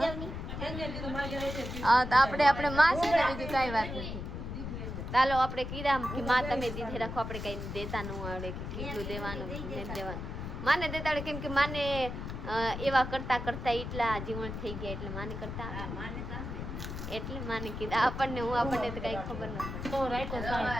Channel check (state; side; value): noise; left; rumble, 6 dB below the sound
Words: જાવ. હા તો આપણે માં છે ને બીજું કઈ વાત નથી. ચાલો આપણે કીધા કે માં તમે દીધે રાખો, આપણે કઈ દેતા ન આવડે કે કેટલું દેવાનું નહીં દેવાનું. માને દેતા આવડે કેમ કે માને એવા કરતા કરતા એટલા જીવન થઈ ગયા એટલે માને કરતા એટલે માને કીધા. આપણને તો કઈ ખબર ન પડે. તો રાખ્યો